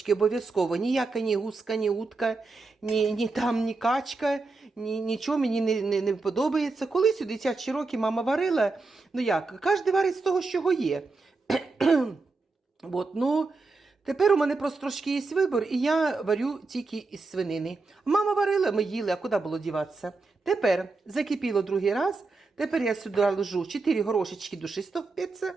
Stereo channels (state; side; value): quieter; left; 3.8 dB